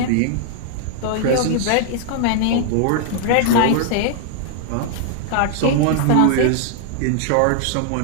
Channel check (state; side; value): different; both; correlation -0.01